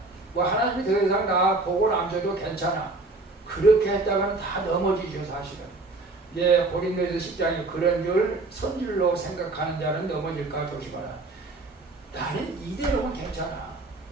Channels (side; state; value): left; quieter; 3.2 dB